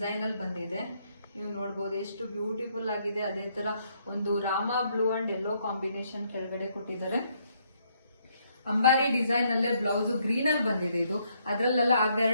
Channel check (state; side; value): inverted; both; correlation -0.72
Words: ಅಲ್ಲಿ ಬಂದಿದೆ. ನೀವು ನೋಡ್ಬೋದು ಎಷ್ಟು ಬ್ಯೂಟಿಫುಲ್ ಆಗಿದೆ. ಅದೇ ತರ ಒಂದು Rama blue and yellow combination ಕೆಳಗಡೆ ಕೊಟ್ಟಿದ್ದಾರೆ. ಅಂಬಾರಿ ಡಿಸೈನ್ ಅಲ್ಲೇ ಬ್ಲೌಸ್ ಗ್ರೀನ್ ಅಲ್ಲಿ ಬಂದಿದೆ. ಇದು ಅದ್ರಲ್ಲೆಲ್ಲ